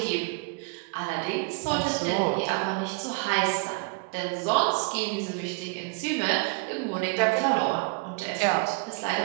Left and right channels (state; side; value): quieter; left; 30.4 dB